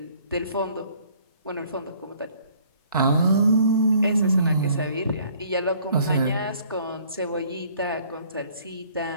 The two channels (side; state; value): both; inverted; correlation -0.59